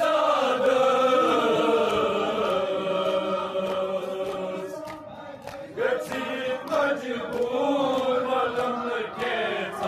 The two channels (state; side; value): identical; both; correlation 1.00